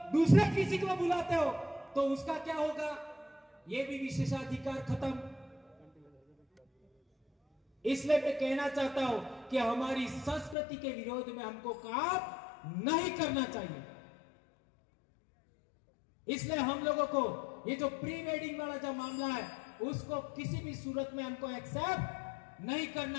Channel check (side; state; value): right; drops out; at 10.6 s